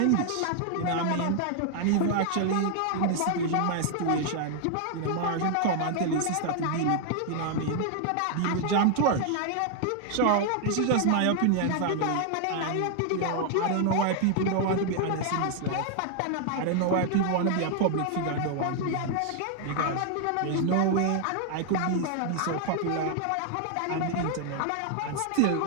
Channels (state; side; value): different; both; correlation 0.00